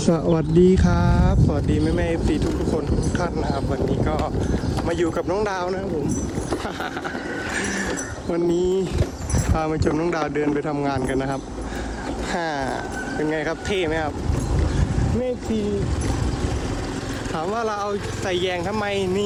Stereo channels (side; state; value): both; identical; correlation 1.00